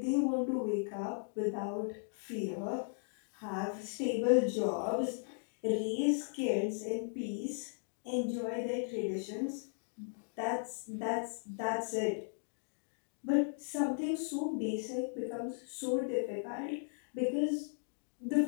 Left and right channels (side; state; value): right; silent; digital silence